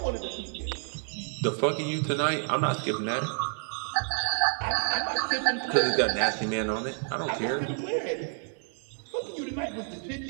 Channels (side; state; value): left; silent; 58 dB below the other